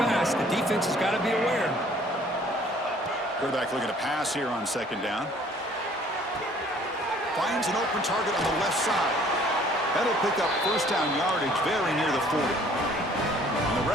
The defense has got to be aware. Quarterback looking to pass here on second down. Finds an open target on the left side. That'll pick up first down yardage very near the 40. And the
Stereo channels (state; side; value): normal; both; correlation 0.56